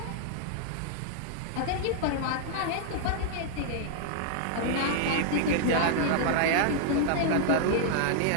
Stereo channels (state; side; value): different; both; correlation -0.01